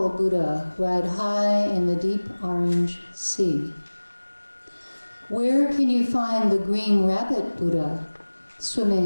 Buddha ride high in the deep orange sea. Where can you find the green rabbit Buddha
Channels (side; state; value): both; inverted; correlation -1.00